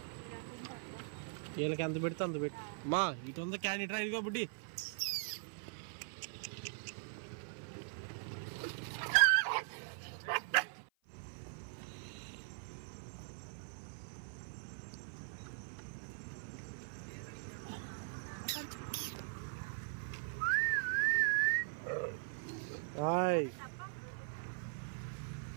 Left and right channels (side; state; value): left; silent; 50 dB below the other